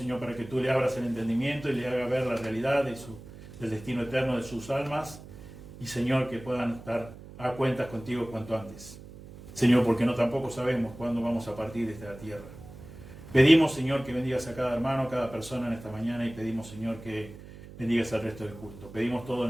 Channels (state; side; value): noise; right; hum, 16 dB below the sound